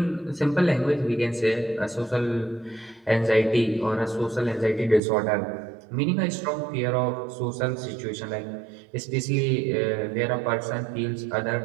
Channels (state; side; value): drops out; left; at 5.0 s